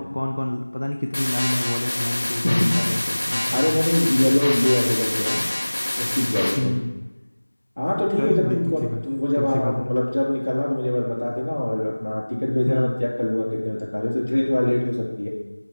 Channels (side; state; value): both; inverted; correlation -1.00